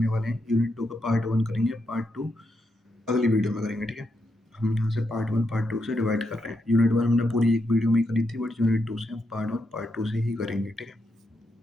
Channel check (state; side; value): normal; both; correlation 0.82